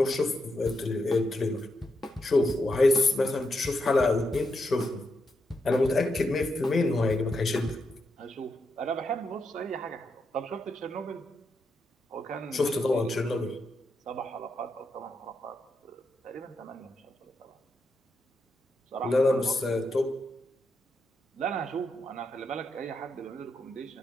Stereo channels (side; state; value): both; normal; correlation 0.83